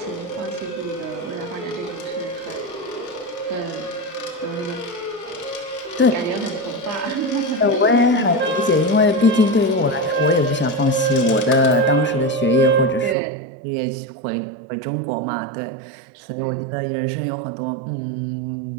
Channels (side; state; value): left; drops out; at 13.2 s